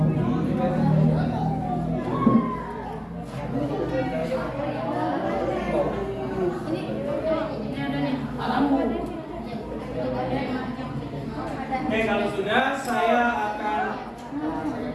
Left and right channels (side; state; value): both; identical; correlation 1.00